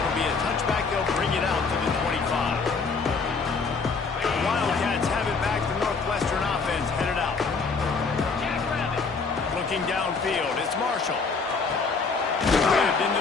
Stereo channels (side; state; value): right; quieter; 4.7 dB